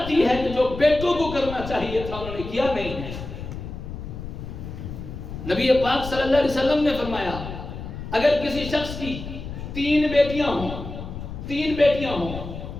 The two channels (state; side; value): noise; left; rumble, 9 dB below the sound